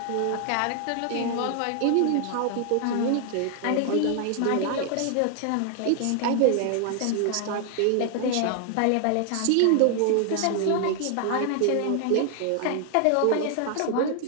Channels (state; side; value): different; both; correlation 0.00